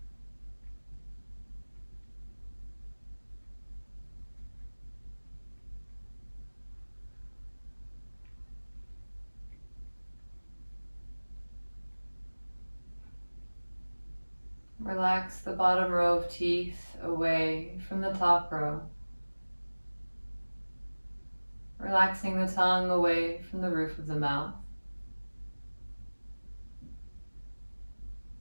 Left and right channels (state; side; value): inverted; both; correlation -1.00